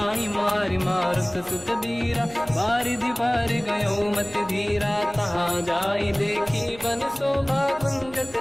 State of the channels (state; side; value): noise; left; hum, 22 dB below the sound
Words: मारि मारुत सुत बीरा बारिधि पार गयो मत धीरा। तहाँ जाई देखी बन शोभा कुंजत